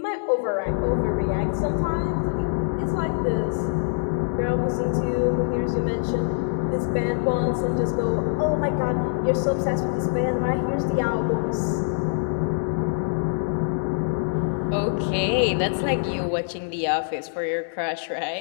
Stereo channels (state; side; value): silent; right; 62 dB below the other